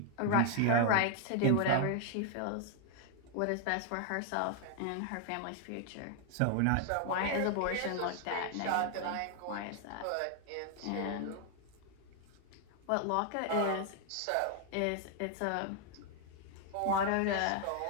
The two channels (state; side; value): different; both; correlation 0.00